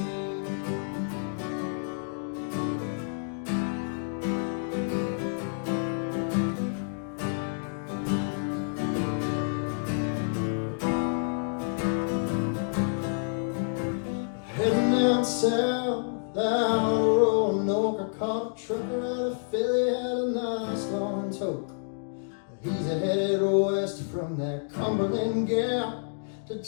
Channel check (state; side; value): silent; right; digital silence